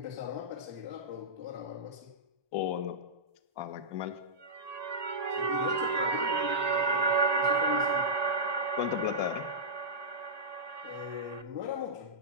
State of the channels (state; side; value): late; left; 1.2 ms